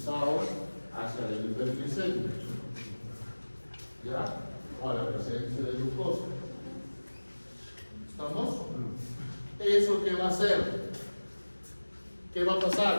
hacia la hiperglicemia. ¿Ya? O a la presencia de glucosa. ¿Estamos? ¿Eso qué va a hacer? ¿Qué va a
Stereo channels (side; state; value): both; inverted; correlation -1.00